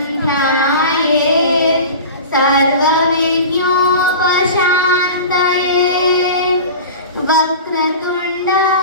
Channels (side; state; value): both; inverted; correlation -0.34